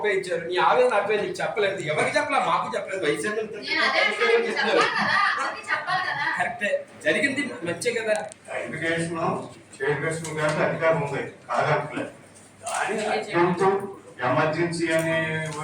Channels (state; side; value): identical; both; correlation 1.00